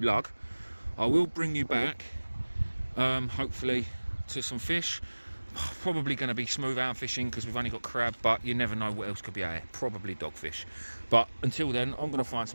I will bring you back, hopefully, to some fish. Probably going to be smooth hound fishing because we've only got crab, but you never know what else could be out here. Probably dogfish. But until then, I'm going to find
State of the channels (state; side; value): inverted; both; correlation -1.00